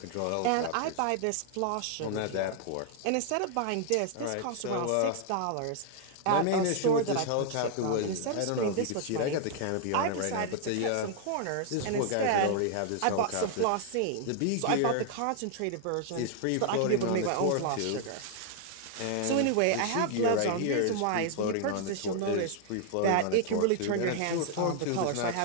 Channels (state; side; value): different; both; correlation 0.00